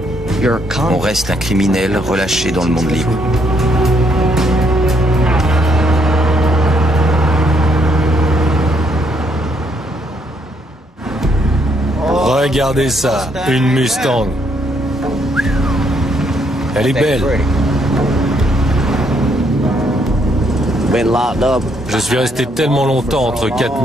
On reste un criminel relâché dans le monde libre. Regardez ça, une Mustang. Elle est belle. Je suis resté tellement longtemps entre quatre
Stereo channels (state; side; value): normal; both; correlation 0.71